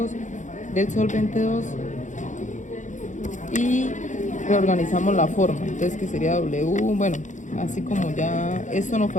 del solvente 2, y reorganizamos la forma, entonces que sería W, bueno, así como ya esto nos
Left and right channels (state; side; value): late; right; 0.36 ms